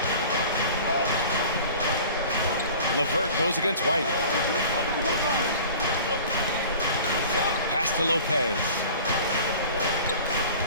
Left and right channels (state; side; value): inverted; both; correlation -0.43